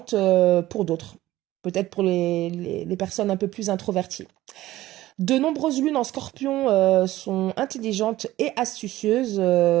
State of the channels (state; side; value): quieter; left; 15.8 dB